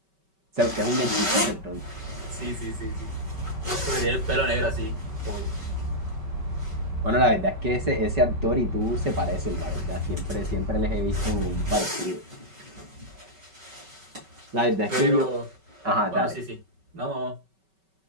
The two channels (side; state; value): left; late; 5.2 ms